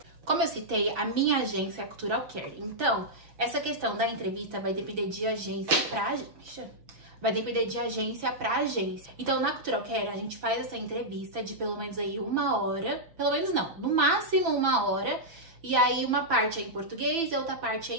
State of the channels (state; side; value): late; left; 6.0 ms